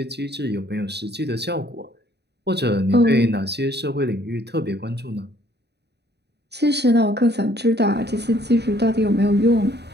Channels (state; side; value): late; left; 0.49 ms